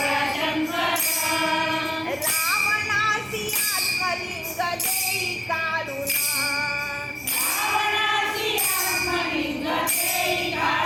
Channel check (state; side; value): noise; right; rumble, 29 dB below the sound